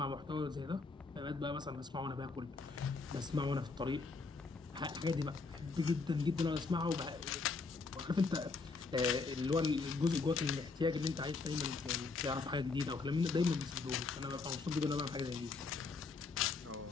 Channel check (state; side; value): quieter; right; 4.2 dB